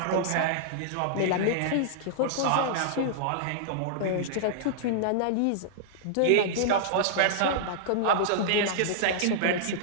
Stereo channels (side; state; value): both; different; correlation -0.02